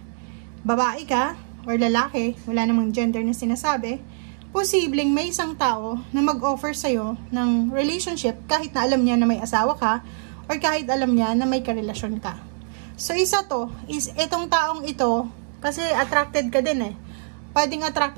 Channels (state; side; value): silent; left; digital silence